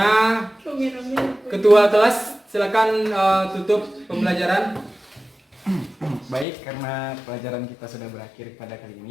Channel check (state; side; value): drops out; right; at 6.5 s